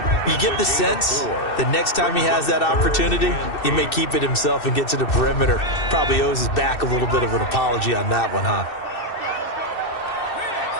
You get the sense the next time he has that opportunity, he may keep it himself and get to the perimeter. Probably owes his back a little bit of an apology on that one, huh?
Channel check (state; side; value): late; right; 2.6 ms